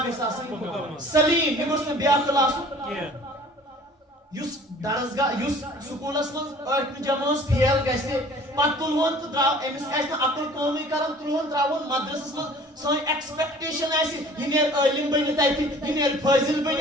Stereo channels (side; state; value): both; normal; correlation 0.48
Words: گس آسن سلیم یہ گس میں بے عقل آسن یس درسگاہ یس سکولس من ٲٹھمہِ جمٲژ فیل گژھِ پتہٕ تُلہون تہٕ درٛاو أمِس آسہِ نہٕ عقل کٲمٕے کران تُلہون ترٛاوہون مدرسس منٛز سٲنۍ ایکسپیکٹیشن آسہِ یہِ نیرِ عٲلِم بٔنِتھ اَتہِ یہِ نیرِ فٲضِل